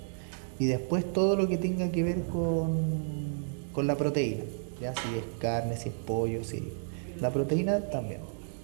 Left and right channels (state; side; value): silent; left; digital silence